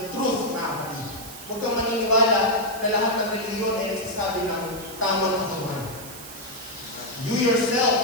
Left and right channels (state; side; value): noise; right; hiss, 14 dB below the sound